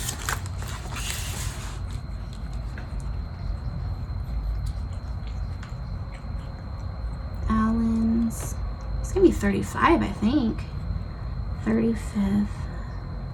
Alan's, it's gonna be 35, I think. 35th,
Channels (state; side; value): identical; both; correlation 1.00